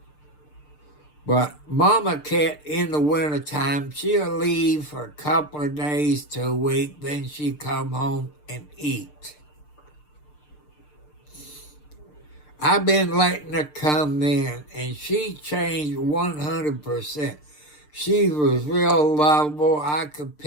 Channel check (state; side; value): late; right; 6.7 ms